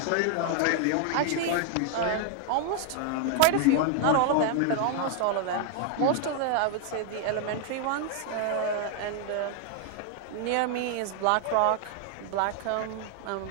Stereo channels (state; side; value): different; both; correlation 0.00